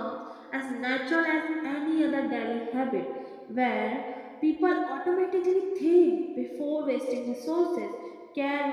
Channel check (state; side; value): identical; both; correlation 1.00